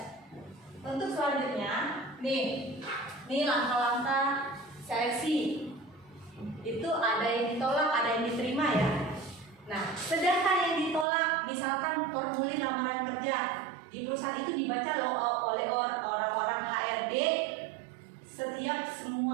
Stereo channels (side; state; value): left; drops out; at 11.1 s